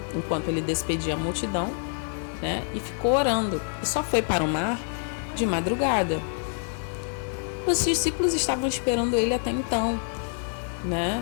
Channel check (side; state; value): right; silent; digital silence